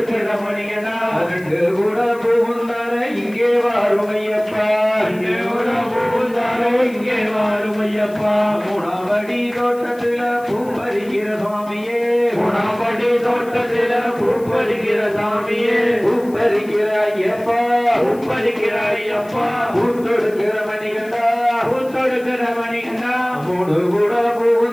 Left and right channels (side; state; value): left; noise; hiss, 24 dB below the sound